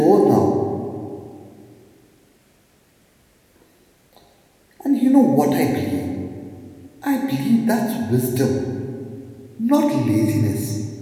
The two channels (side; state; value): both; identical; correlation 1.00